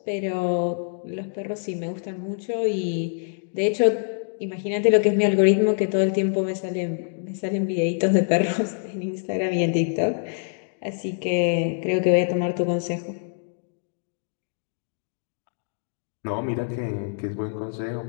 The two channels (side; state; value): right; silent; digital silence